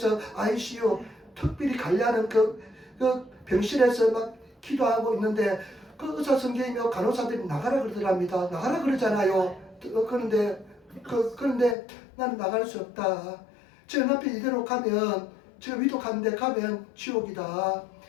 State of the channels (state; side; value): drops out; right; at 11.8 s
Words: ICU 특별히 관리하는 그 병실에서 막 기도하고 있는데 그 의사 선생님이며 간호사들이 나가라 그러더랍니다. 나가라 그러잖아요. 그런데 나는 나갈 수 없다. 지금 남편 이대로 가면 지금 위독한데 가면 지옥이다.